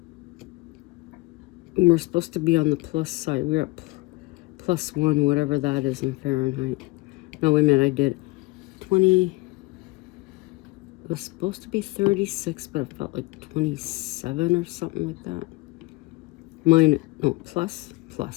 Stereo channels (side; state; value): right; quieter; 23.3 dB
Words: And we're supposed to be on the plus side. We're at +1, whatever that is in Fahrenheit. No, wait a minute, I did 20. It was supposed to be 36, but it felt like 27 or something like that. Plus.